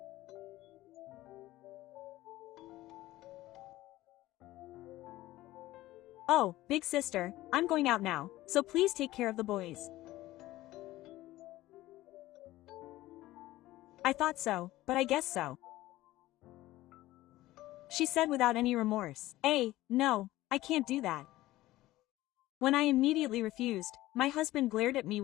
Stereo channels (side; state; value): right; quieter; 16.6 dB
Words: Oh, big sister, I'm going out now, so please take care of the boys. I thought so, but I guess so, she said without any remorse. No, I can't do that. When I immediately refused, my husband glared at me